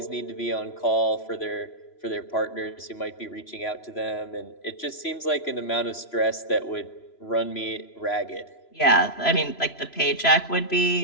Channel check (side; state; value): right; late; 3.0 ms